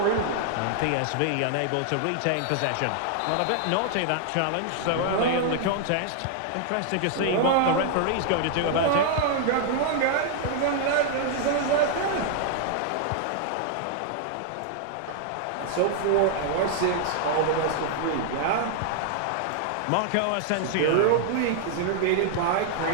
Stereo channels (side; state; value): both; different; correlation 0.00